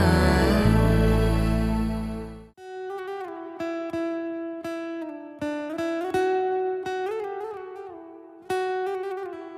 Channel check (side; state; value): both; identical; correlation 1.00